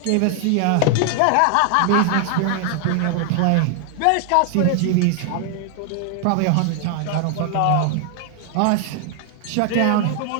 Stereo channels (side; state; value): both; different; correlation 0.00